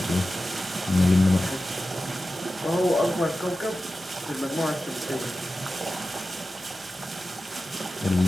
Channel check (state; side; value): normal; both; correlation 0.93